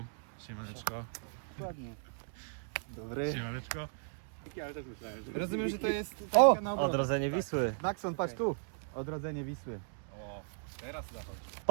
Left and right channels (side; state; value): left; silent; 54 dB below the other